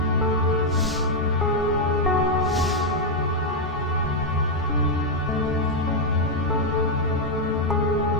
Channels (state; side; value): normal; both; correlation 0.00